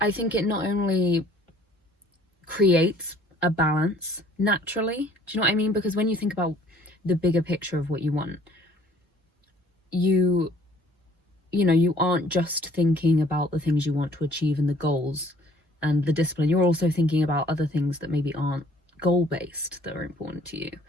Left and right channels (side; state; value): both; normal; correlation 0.56